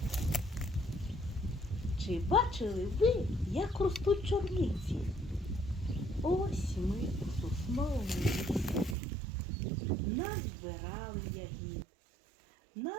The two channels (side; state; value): left; drops out; at 9.0 s